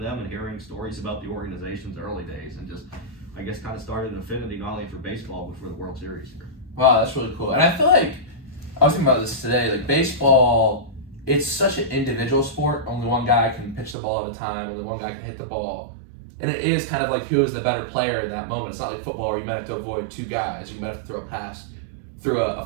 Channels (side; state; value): left; drops out; at 14.0 s